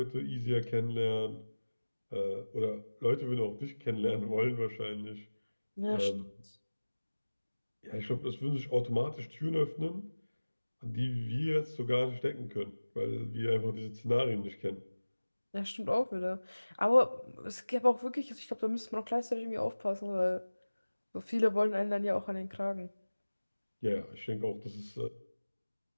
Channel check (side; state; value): both; inverted; correlation -1.00